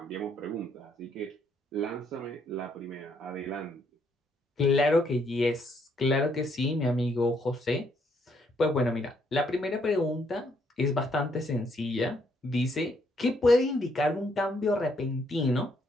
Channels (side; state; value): both; normal; correlation 0.72